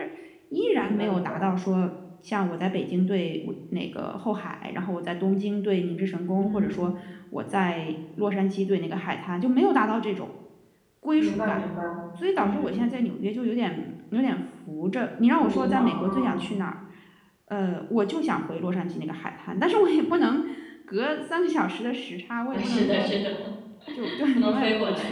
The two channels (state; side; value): identical; both; correlation 1.00